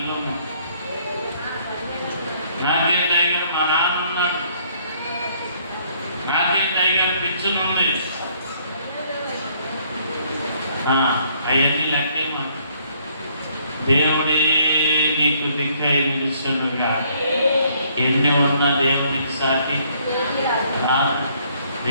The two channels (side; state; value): both; inverted; correlation -0.65